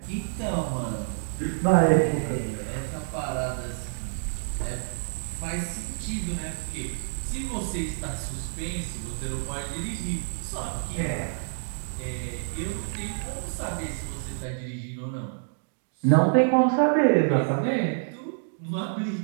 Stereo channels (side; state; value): left; silent; 59 dB below the other